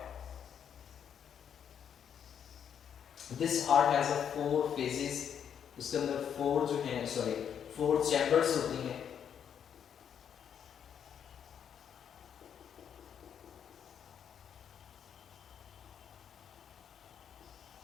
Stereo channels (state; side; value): quieter; right; 8.3 dB